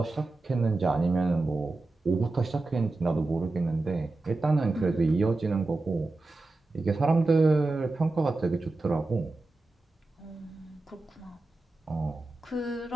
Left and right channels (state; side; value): quieter; left; 3.2 dB